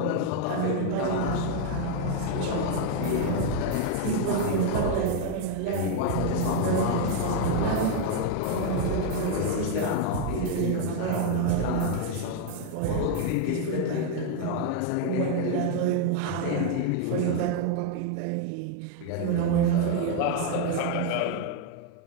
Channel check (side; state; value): both; different; correlation 0.00